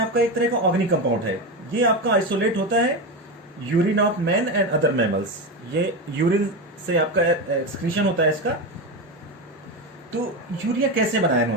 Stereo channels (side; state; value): both; normal; correlation 0.17